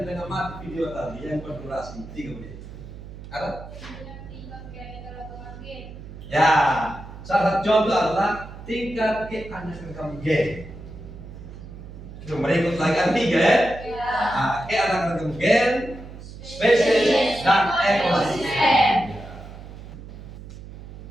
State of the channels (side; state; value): right; noise; hum, 14 dB below the sound